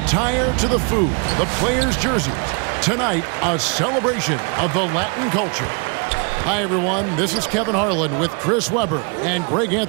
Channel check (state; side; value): quieter; left; 35.3 dB